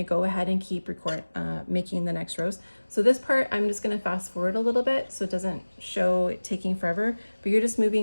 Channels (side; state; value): both; inverted; correlation -1.00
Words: go ahead and keep making the next rows. So this part, I'm just going to fast forward a little bit so it doesn't show it taking forever, but you're just